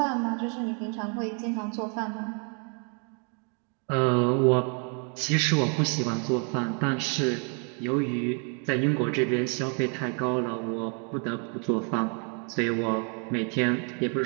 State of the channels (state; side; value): quieter; left; 38.9 dB